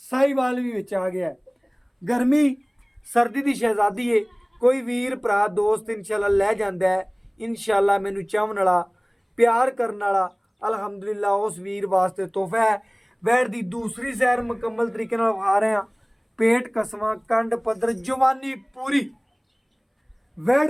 भी विच आ गया। गर्मी सर्दी की शहजादी है। कोई वीर भरा दोस्त इंशाअल्लाह लै जांदा है, इंशाअल्लाह मैनू चाहन वाला प्यार करने वाला अलहमदुलिल्लाह उस वीर वास्ते तोहफा है। वैड़ की दूसरी सैर मुकम्मल तरीके नाल विखा रहे हैं। पेट कसमा कंड पद्धर जवानी पूरी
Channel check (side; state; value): both; identical; correlation 1.00